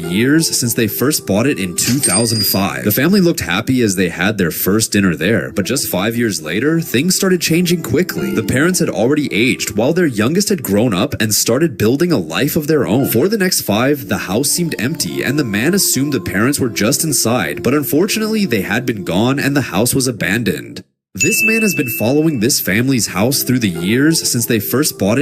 since they first bought it in 2005. The family looked happy as they had their first dinner there, but just 5 years later, things started changing quickly. The parents had already aged, while their youngest had grown up and started building a life of their own. For the next 5, the house seemed empty, and the man assumed the parents were just inside, but unfortunately, they had been gone and the house was abandoned. This man has been following this family's house through the years since they first bought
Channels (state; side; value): identical; both; correlation 1.00